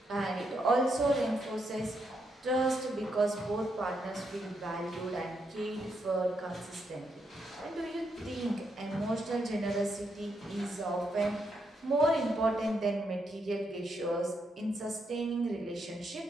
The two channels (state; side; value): normal; both; correlation 0.79